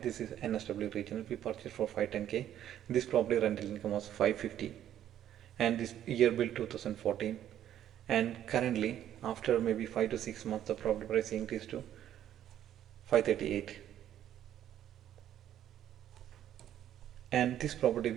this is NSW Regional, we purchased for 510K. This property rental income was 550, and this year built 2014. And currently after maybe 5 to 6 months the property price increased to 538. And this property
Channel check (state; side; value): quieter; left; 11.1 dB